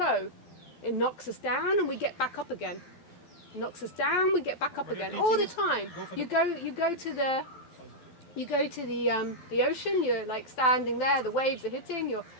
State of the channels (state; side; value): late; right; 12 ms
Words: It knocks us down and we get back up again. It knocks us down, we get back up again. All the time. You go to the ocean, you're like standing there, the waves are hitting, you're